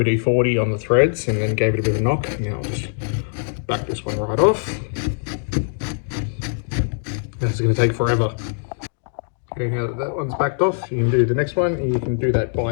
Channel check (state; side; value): silent; right; 61 dB below the other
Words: on the threads and then gave it a bit of a knock. Now I'll just back this one right off. That's going to take forever. Okay, now that one's backed off, you can do the next one, and you can do that